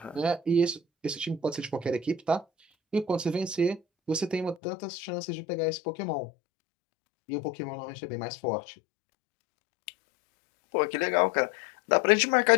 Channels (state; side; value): drops out; right; at 4.5 s